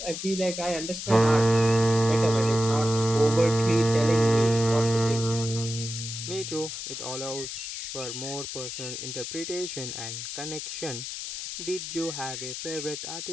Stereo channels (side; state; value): left; noise; hiss, 7 dB below the sound